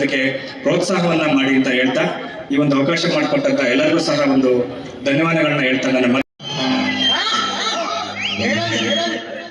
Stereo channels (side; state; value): both; identical; correlation 1.00